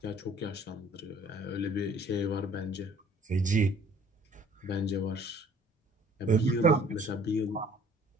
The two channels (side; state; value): both; normal; correlation 0.55